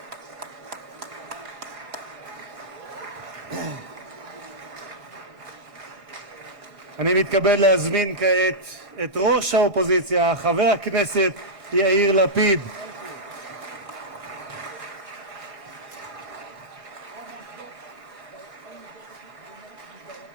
אני מתכבד להזמין כעת את ראש האופוזיציה, חבר הכנסת יאיר לפיד.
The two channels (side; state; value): left; late; 1.6 ms